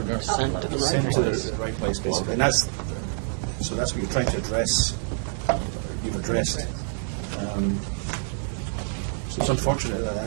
Uploaded. sent to the right place, basically. And that's what you're trying to address. So it's unfortunate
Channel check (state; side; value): silent; left; 61 dB below the other